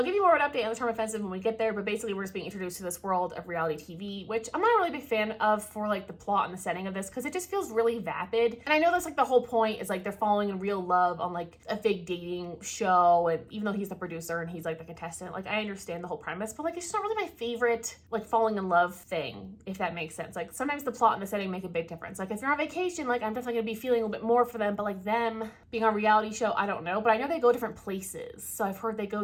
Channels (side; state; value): both; identical; correlation 1.00